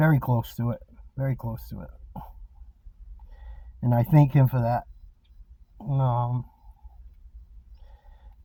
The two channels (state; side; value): identical; both; correlation 1.00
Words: close to it. And I thank him for that.